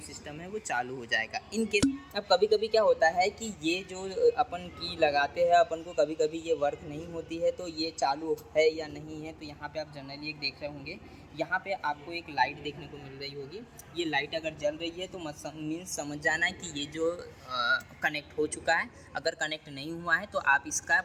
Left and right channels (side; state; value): both; identical; correlation 1.00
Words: सिस्टम है वो चालू हो जाएगा। इन केस अब कभी कभी क्या होता है कि ये जो अपन की लगाते हैं अपन को कभी कभी ये वर्क नहीं होती है, तो ये चालू है या नहीं है। तो यहाँ पे आप जनरली एक देख रहे होंगे, यहाँ पे आपको एक लाइट देखने को मिल रही होगी। ये लाइट अगर जल रही है तो मीन्स समझ जाना है कि ये जो कनेक्ट हो चुका है। अगर कनेक्ट नहीं हुआ है तो आप इसका